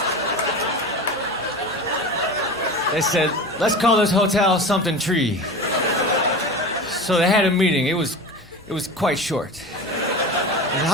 They said, let's call this hotel something tree. So they had a meeting. It was quite short. They said,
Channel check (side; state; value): both; normal; correlation 0.30